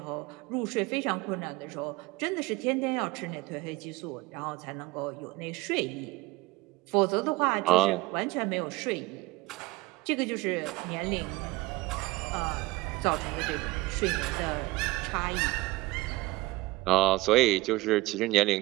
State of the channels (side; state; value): left; quieter; 20.6 dB